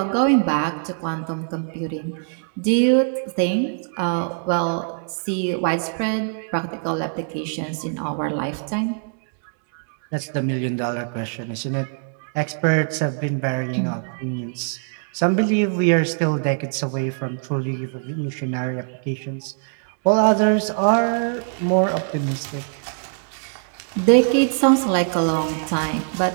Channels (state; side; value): silent; left; digital silence